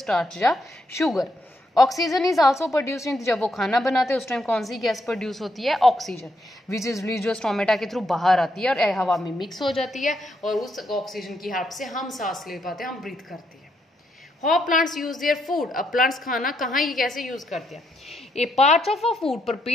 या sugar. Oxygen is also produce in, जब वो खाना बनाते हैं उस टाइम कौन सी गैस प्रोड्यूस होती है, ऑक्सीजन, विच इज रिलीज जो स्टोमेटा के थ्रू बाहर आती है और हवा में मिक्स हो जाती है और उस ऑक्सीजन की हेल्प से हम सांस ले पाते हैं, हम ब्रीथ करते हैं। How plants use their food, अब प्लांट्स खाना कहाँ ये कैसे यूज करते हैं। A part of a food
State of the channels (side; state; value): both; normal; correlation 0.78